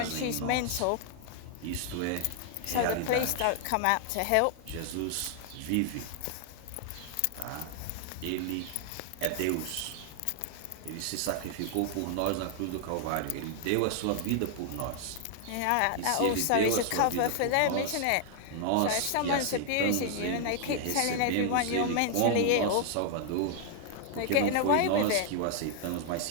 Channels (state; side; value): different; both; correlation 0.00